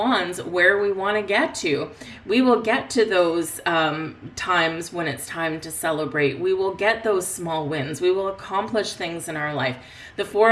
where we want to get to. We will get to those times when it's time to celebrate. We will get those small wins. We will accomplish things in our life. The Four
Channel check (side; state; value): both; identical; correlation 1.00